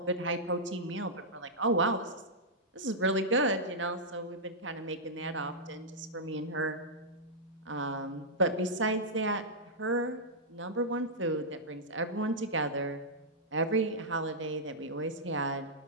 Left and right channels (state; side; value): normal; both; correlation -0.09